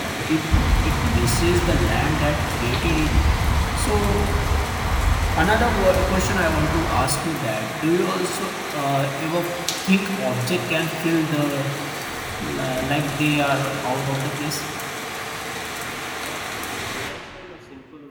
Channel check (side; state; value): both; identical; correlation 1.00